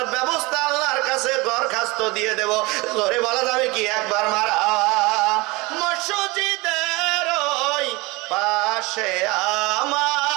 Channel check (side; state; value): left; quieter; 24.0 dB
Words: ব্যবস্থা আল্লাহর কাছে দরখাস্ত দিয়ে দেব। জোরে বলা যাবে কি একবার মারা? মসজিদের ওই পাশে